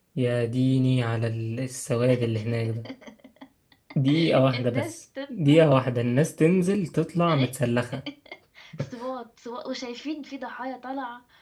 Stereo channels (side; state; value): both; identical; correlation 1.00